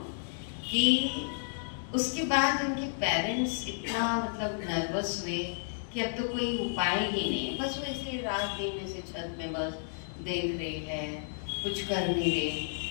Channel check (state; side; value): silent; right; digital silence